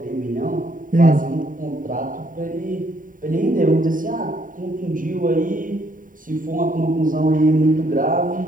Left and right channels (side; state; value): left; late; 0.39 ms